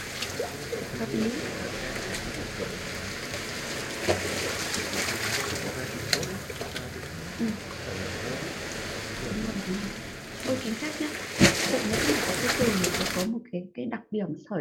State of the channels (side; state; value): both; identical; correlation 1.00